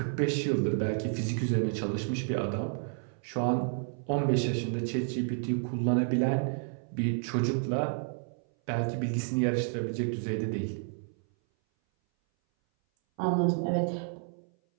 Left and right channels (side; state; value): left; silent; 57 dB below the other